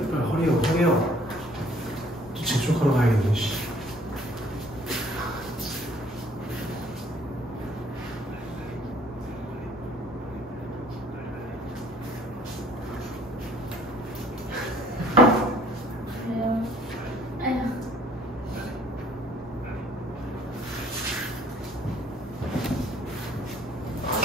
허리요. 또 재촉하러 가야겠네, 씨.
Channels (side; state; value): both; normal; correlation 0.58